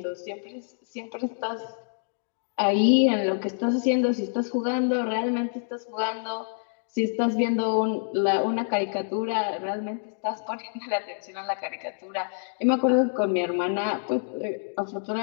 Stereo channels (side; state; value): right; silent; digital silence